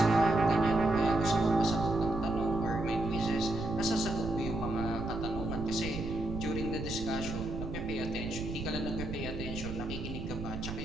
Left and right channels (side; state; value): right; noise; rumble, 7 dB below the sound